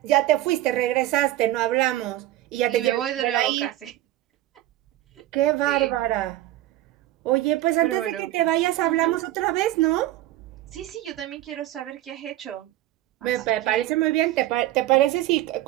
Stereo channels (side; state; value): left; quieter; 15.0 dB